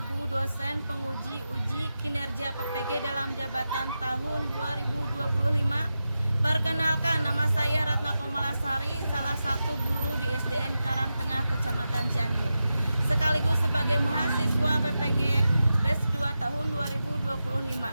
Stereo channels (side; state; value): both; inverted; correlation -0.91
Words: dosen penguji uji kinerja PPG dalam jabatan tahun 2025. Perkenalkan, nama saya Ratna Komalasari, salah satu guru di SDN Karangtengah, Kecamatan Cianjur. Sekaligus sebagai mahasiswa PPG BES 2 tahun 2025,